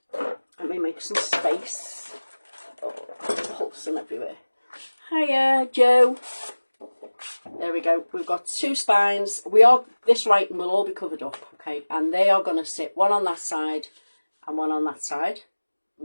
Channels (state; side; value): inverted; both; correlation -1.00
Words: Let me make some space. Oh, pulsing everywhere. Hiya, Joe. There we go. We've got 2 spines. This writing will all be covered up, okay? And they are going to sit one on that side and one on that side,